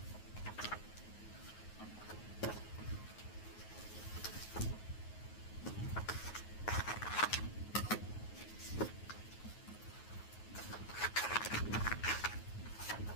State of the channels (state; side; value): late; right; 9.4 ms